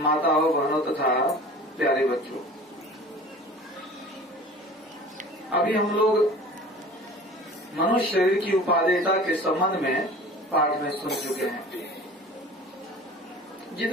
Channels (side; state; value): both; normal; correlation 0.42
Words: बहनों तथा प्यारे बच्चों, अभी हम लोग मनुष्य शरीर की उपादेयता के संबंध में पाठ में सुन चुके हैं।